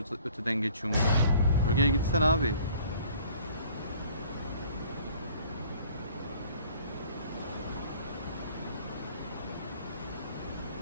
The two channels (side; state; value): both; inverted; correlation -0.55